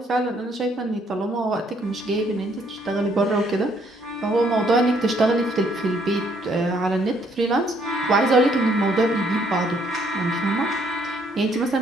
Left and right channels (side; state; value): both; normal; correlation 0.67